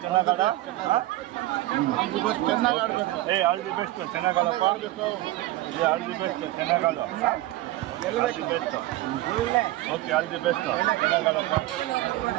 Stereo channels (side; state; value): left; quieter; 16.9 dB